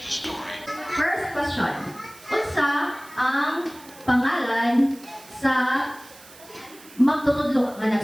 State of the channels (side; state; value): right; noise; hiss, 21 dB below the sound